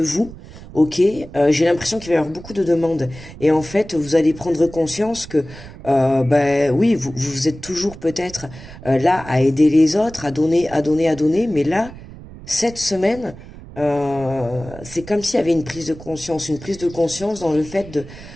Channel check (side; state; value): right; noise; rumble, 16 dB below the sound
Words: Ok, j'ai l'impression qu'il va y avoir beaucoup de demandes. Et en fait, vous allez prendre conscience que, oui, vous êtes toujours peut-être là à aider les autres, à donner, mais là, cette semaine, c'est comme s'il y avait une prise de conscience dans le fait